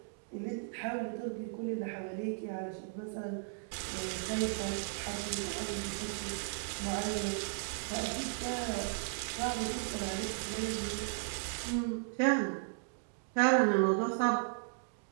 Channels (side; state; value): left; silent; digital silence